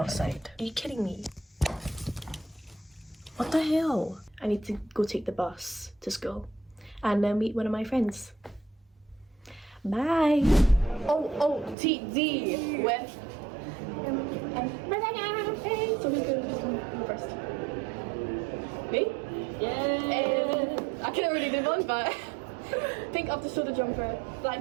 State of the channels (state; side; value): drops out; left; at 11.8 s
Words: Are you kidding me? What the hell? I need to go take the bus to school and then meet one of my friends. Bye! OOTD with Hey, so who's gonna go first? Me? Yeah! I can't really do one, but pink off the shoulder jumper,